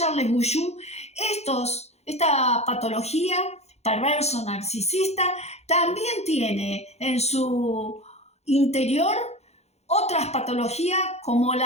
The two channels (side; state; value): right; late; 0.31 ms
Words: Bouchou, esta patología perverso narcisista también tiene en su interior otras patologías como